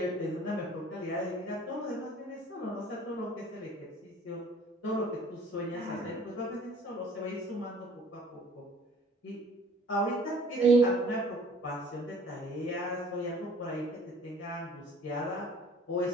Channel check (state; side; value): normal; both; correlation 0.52